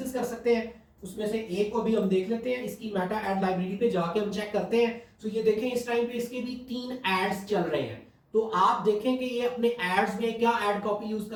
कर सकते हैं। उसमें से एक को भी हम देख लेते हैं। इसकी मेटा एड लाइब्रेरी पे जाके हम चेक करते हैं। तो ये देखें, इस टाइम पे इसके भी 3 एड्स चल रहे हैं। तो आप देखें कि ये अपने एड्स में क्या एड कॉपी यूज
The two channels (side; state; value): both; identical; correlation 1.00